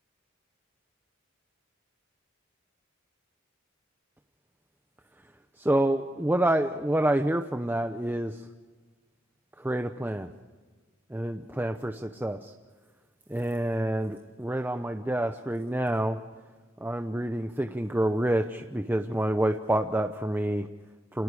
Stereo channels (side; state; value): both; normal; correlation 0.88